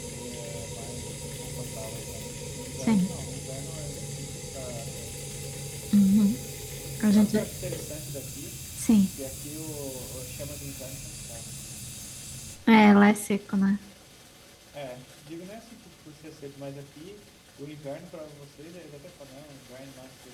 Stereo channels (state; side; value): identical; both; correlation 1.00